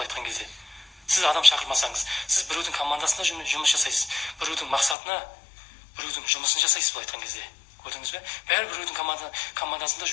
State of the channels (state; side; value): drops out; right; at 5.0 s